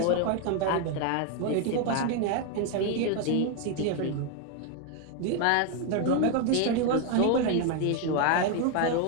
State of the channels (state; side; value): different; both; correlation 0.01